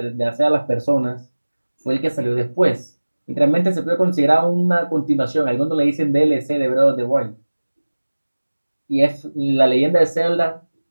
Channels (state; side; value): inverted; both; correlation -1.00